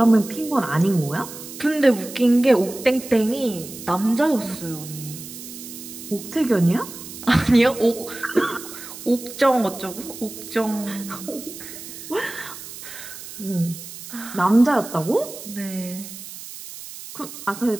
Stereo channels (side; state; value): right; noise; hiss, 13 dB below the sound